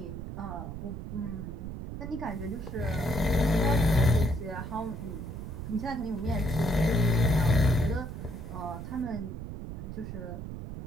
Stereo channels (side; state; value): right; noise; rumble, 8 dB below the sound